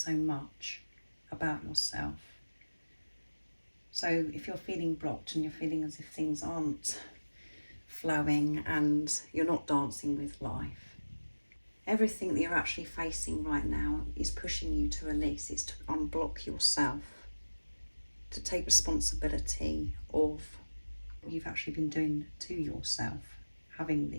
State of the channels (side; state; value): both; inverted; correlation -1.00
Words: much about yourself. So if you're feeling blocked and you're feeling as if things aren't flowing and you're not dancing with life, everything that you're actually facing right now is pushing you to release. It's to unblock yourself, to take responsibility of what you've actually been doing to yourself, having